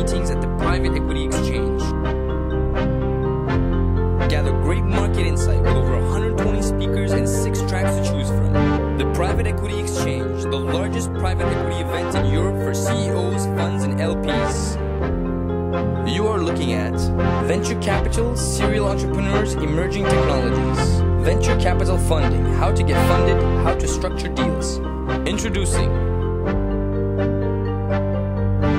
at the Private Equity Exchange. Gather great market insight with over 120 speakers and 6 tracks to choose from. The Private Equity Exchange, the largest private equity event in Europe for CEOs, funds, and LPs. You are looking at venture capital, serial entrepreneurs, emerging technologies, venture capital funding, how to get funded, how to structure deals. Introducing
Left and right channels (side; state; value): both; identical; correlation 1.00